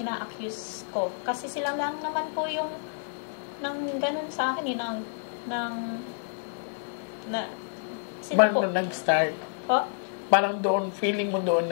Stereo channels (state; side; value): silent; right; digital silence